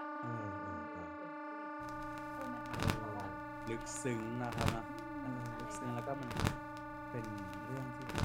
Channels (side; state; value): both; identical; correlation 1.00